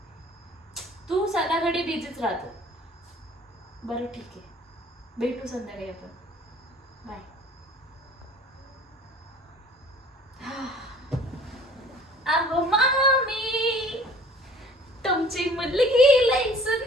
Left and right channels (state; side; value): normal; both; correlation 0.50